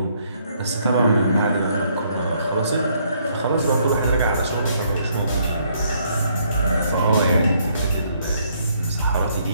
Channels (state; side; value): inverted; both; correlation -0.69